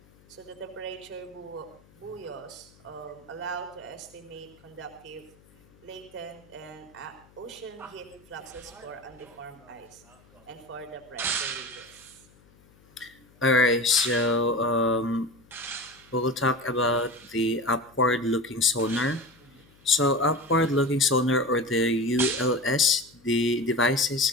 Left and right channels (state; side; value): noise; left; hum, 28 dB below the sound